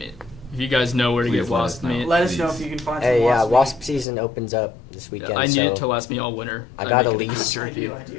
If you guys know where to Please get let us wasp know. meat, Let us know Please. if you can find Hey, some yeah, wasp wasp season opens up this weekend. I need so it to last me all winter. I I'd got a make it lease. meat. I jerky. do, I do.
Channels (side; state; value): right; drops out; at 4.0 s